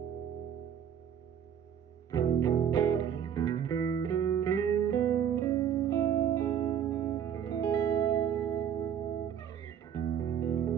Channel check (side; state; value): left; quieter; 8.8 dB